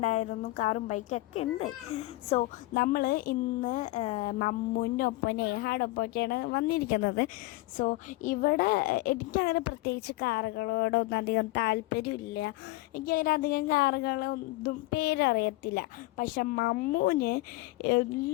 കാറും ബൈക്കൊക്കെ ഉണ്ട്. സോ നമ്മൾ ഇന്ന് മമ്മൂൻ്റെ ഒപ്പം നേഹാടൊപ്പമൊക്കെയാണ് വന്നിരിക്കുന്നത്. സോ ഇവിടെ എനിക്കങ്ങനെ പ്രത്യേകിച്ച് കാറുകളോടൊന്നും അധികം താല്പര്യമില്ല. എനിക്കങ്ങനെ അധികം കാറുകളൊന്നും പേരറിയത്തില്ല. പക്ഷെ മമ്മൂന്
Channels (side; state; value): right; quieter; 19.9 dB